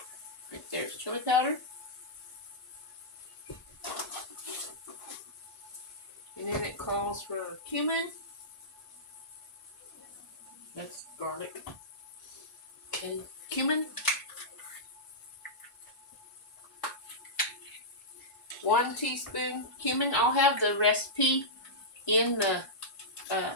right there's chili powder. And then it calls for cumin. That's garlic. And cumin. 1 teaspoon cumin. I'll have the recipe in the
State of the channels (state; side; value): normal; both; correlation -0.13